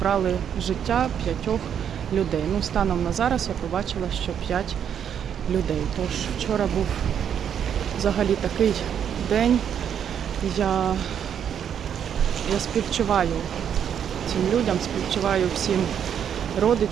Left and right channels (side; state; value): left; quieter; 8.6 dB